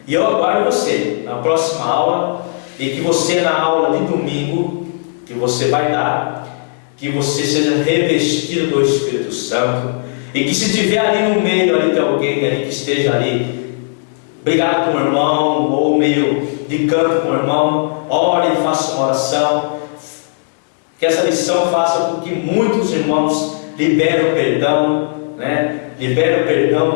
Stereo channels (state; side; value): silent; right; digital silence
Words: e eu aguardo você na próxima aula, e que você na aula de domingo, que você vai dar, que você seja revestido do Espírito Santo, e que se tiver ali no meio ali de alguém ali que esteja ali brigado com o irmão, ou meio de canto com o irmão, ore e faça uma oração, que essa lição faça com que muitos irmãos liberem o perdão, liberem o perdão,